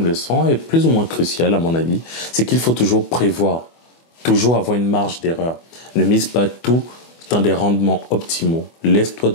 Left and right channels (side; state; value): right; late; 24 ms